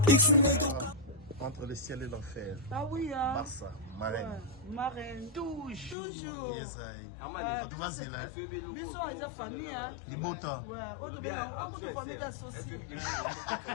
Iksinede. Entre le ciel et l'enfer. Ah oui, hein. Barça, marraine. Ouais, marraine. Toujours. Yes, I. Tu vas là. Bisous, ils ont famille, hein. Libota. Ouais, autre famille d'associés.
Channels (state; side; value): drops out; right; at 6.0 s